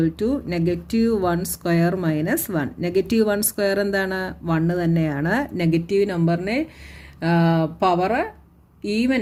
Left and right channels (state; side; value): identical; both; correlation 1.00